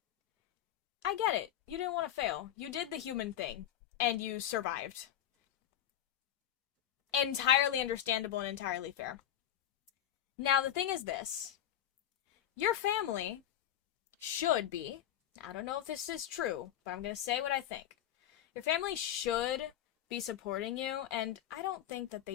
I get it. You didn't want to fail. You did the human thing and you survived. entirely understandable and entirely fair. Now, the thing is this. Your family should be, I don't know if this is true, but I'm going to say what I think. Your family should be supporting you, and I don't think that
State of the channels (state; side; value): quieter; right; 11.2 dB